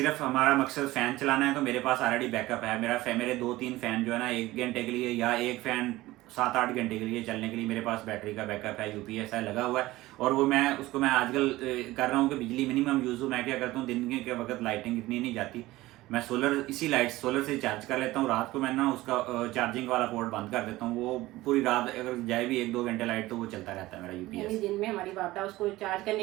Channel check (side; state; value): left; quieter; 18.0 dB